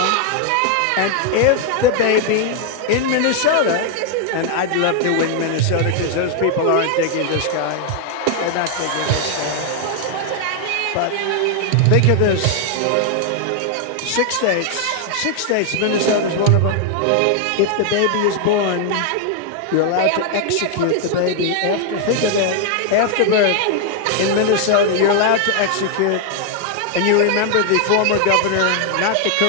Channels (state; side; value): different; both; correlation 0.00